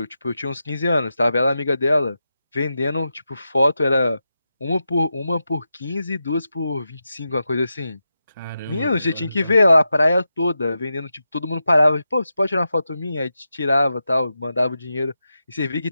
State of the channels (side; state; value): both; inverted; correlation -0.89